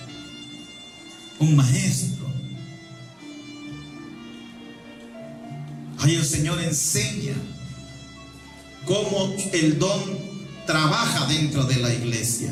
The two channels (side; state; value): both; identical; correlation 1.00